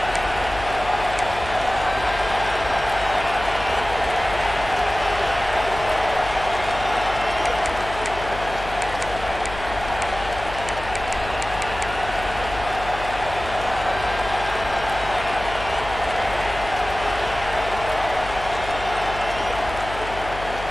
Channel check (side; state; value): left; noise; hum, 11 dB below the sound